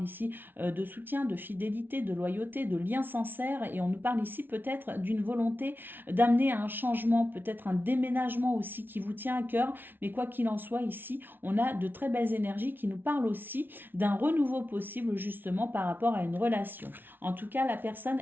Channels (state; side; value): late; left; 0.098 ms